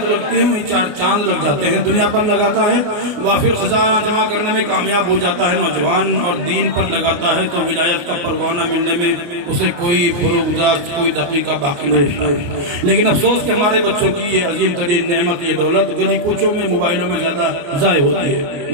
لگتی ہے وہیں چار چاند لگ جاتے ہیں۔ دنیا پر لگاتا ہے وافر خزانہ جمع کرنے میں کامیاب ہو جاتا ہے نوجوان، اور دین پر لگاتا ہے تو ولایت کا پروانہ ملنے میں اسے کوئی فروغ گزاشت، کوئی دقیقہ باقی نہیں رہتا ہے۔ لیکن افسوس کہ ہمارے بچوں کی یہ عظیم ترین نعمت، یہ دولت گلی کوچوں میں موبائلوں میں زیادہ ضائع ہوتی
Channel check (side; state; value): left; late; 29 ms